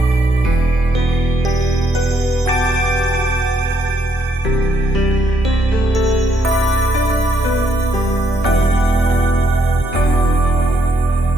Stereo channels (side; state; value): both; normal; correlation 0.73